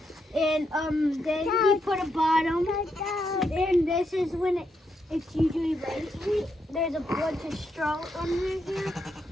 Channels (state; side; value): normal; both; correlation 0.81